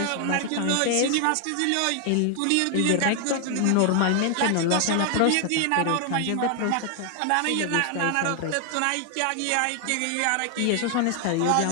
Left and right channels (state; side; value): different; both; correlation 0.00